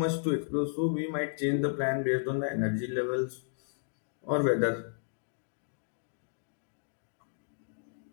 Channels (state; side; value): silent; right; digital silence